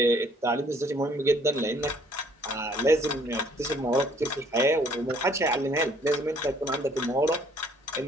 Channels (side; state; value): both; normal; correlation 0.61